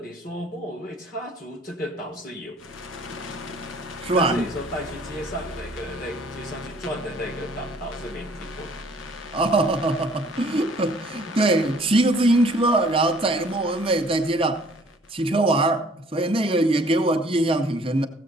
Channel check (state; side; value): normal; both; correlation 0.56